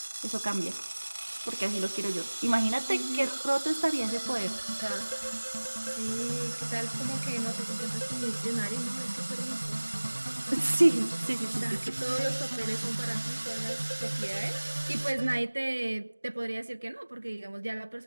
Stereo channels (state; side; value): inverted; both; correlation -1.00